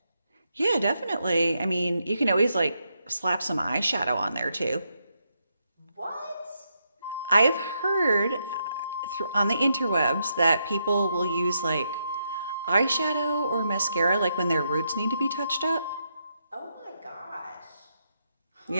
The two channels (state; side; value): inverted; both; correlation -0.80